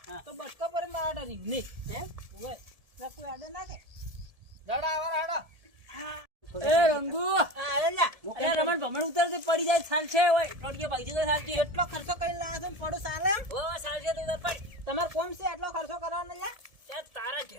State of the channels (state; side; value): late; left; 1.7 ms